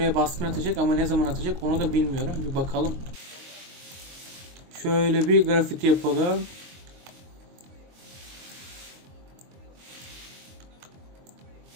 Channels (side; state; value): left; late; 22 ms